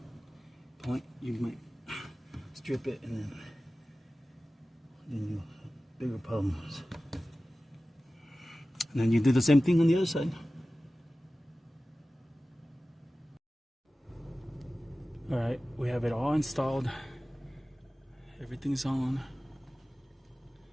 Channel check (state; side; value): normal; both; correlation 0.96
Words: point. You might strip it and then you have bigger problems. And then you do the same thing on the other side. Alright, we have it all installed. Everything's on.